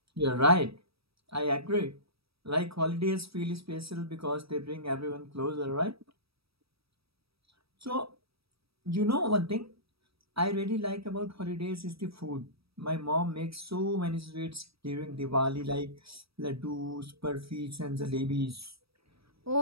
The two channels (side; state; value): left; late; 0.77 ms